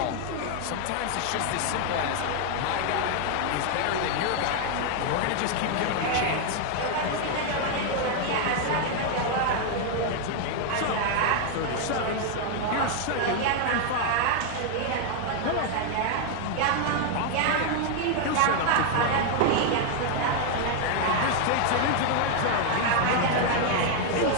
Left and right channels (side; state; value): both; different; correlation 0.00